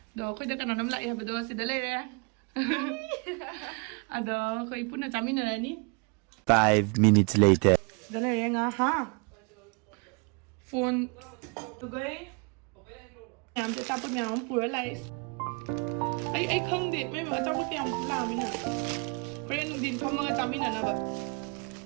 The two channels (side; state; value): left; quieter; 33.4 dB